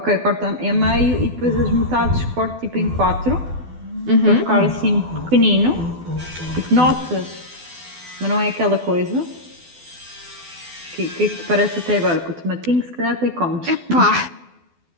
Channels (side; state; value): left; late; 12 ms